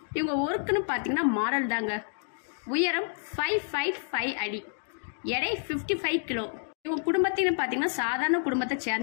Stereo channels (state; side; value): silent; right; digital silence